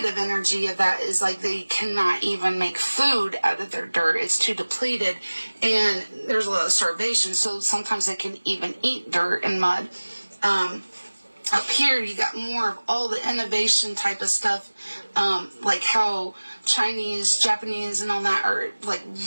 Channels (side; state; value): both; inverted; correlation -1.00